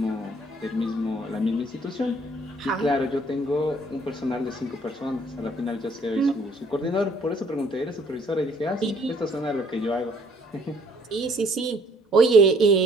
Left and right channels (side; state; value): both; normal; correlation 0.62